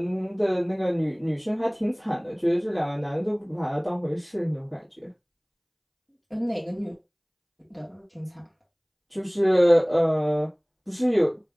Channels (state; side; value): identical; both; correlation 1.00